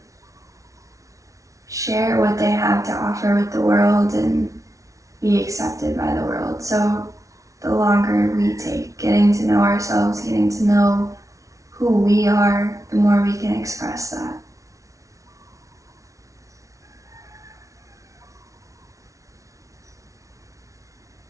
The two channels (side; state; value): left; late; 0.16 ms